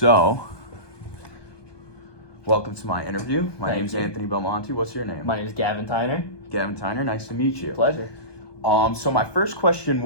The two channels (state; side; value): late; right; 1.2 ms